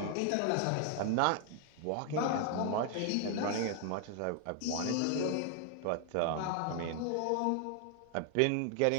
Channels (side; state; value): both; different; correlation 0.00